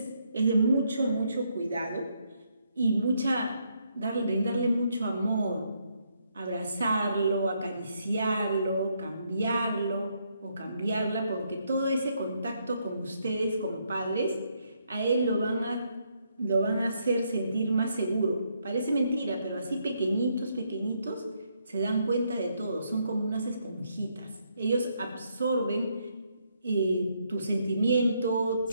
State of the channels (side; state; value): both; inverted; correlation -0.75